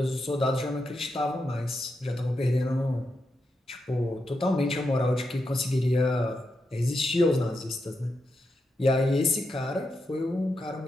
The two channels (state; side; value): normal; both; correlation 0.85